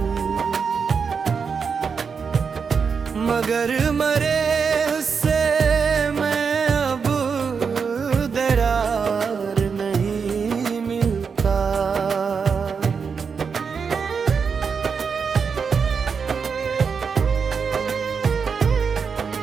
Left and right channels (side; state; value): left; quieter; 5.9 dB